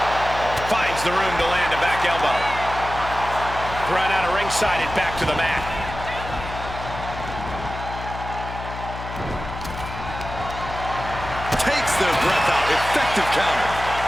Finds the room to land a back elbow. Thrown out of ringside and back to the mat. Their breath out. Effective counter.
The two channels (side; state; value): left; noise; hum, 9 dB below the sound